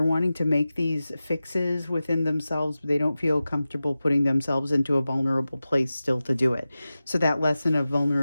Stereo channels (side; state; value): both; inverted; correlation -0.95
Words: wanting to make these fixes within themselves, but they don't feel comfortable putting themselves into a vulnerable place still to do it. So that lesson of